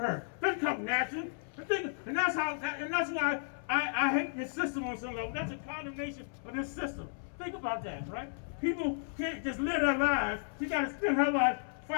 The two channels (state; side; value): silent; right; 55 dB below the other